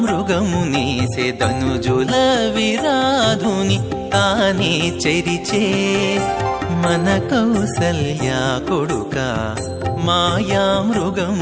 మృగమునేసే ధనుజుల విరాధుని తానే చెరిచే మన కౌసల్య కొడుక మాయా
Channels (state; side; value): identical; both; correlation 1.00